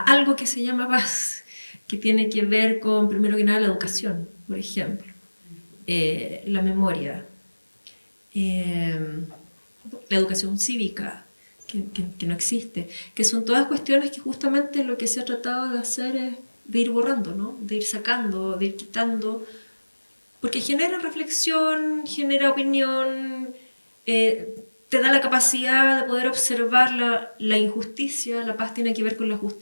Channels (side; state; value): both; inverted; correlation -1.00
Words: que se llama paz, que tiene que ver con, primero que nada, la educación, por ejemplo, la memoria, la educación cívica, que no existe, que son todas cuestiones que justamente lo que se ha tratado de hacer es de ir borrando, ¿no? De ir sacando, de ir quitando, porque genera reflexión, genera opinión, te da la capacidad de poder observar la injusticia. La paz tiene que ver con la